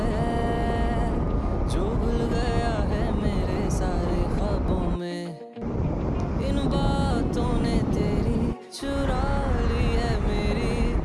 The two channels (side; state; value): both; identical; correlation 1.00